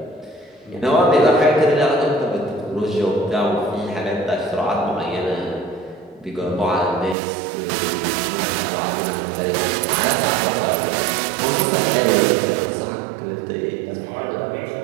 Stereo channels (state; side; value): drops out; left; at 7.2 s